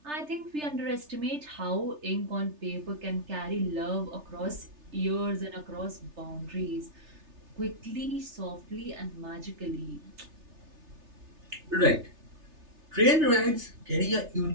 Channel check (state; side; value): late; left; 3.3 ms